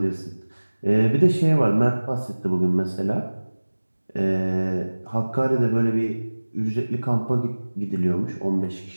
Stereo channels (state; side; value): inverted; both; correlation -1.00